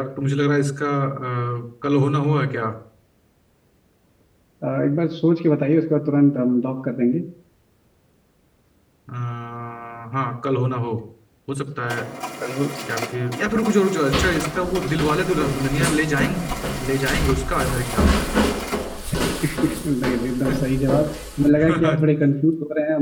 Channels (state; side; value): identical; both; correlation 1.00